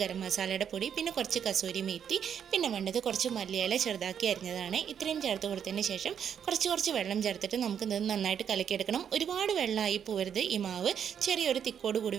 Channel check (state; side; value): quieter; left; 8.3 dB